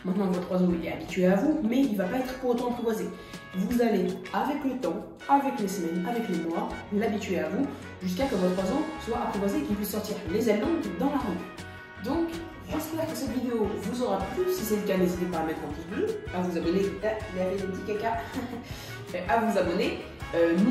Maintenant, votre oiseau il est habitué à vous, mais il ne va pas être pour autant apprivoisé. Vous allez, avec le temps, avec les semaines, avec les mois, l'habituer à vous, jusqu'à que votre oiseau soit apprivoisé et qu'il puisse sortir les ailes longues dans la rue. Donc, j'espère que cette vidéo vous aura plu. Si c'est le cas, n'hésitez pas à mettre un pouce bleu, à vous abonner, il y avait des petits caca, à vous abonner.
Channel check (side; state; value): both; identical; correlation 1.00